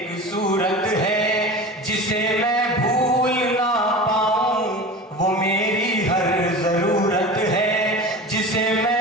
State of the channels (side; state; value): both; normal; correlation 0.32